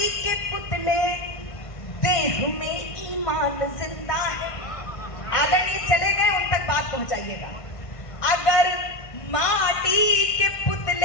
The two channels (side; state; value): right; late; 1.5 ms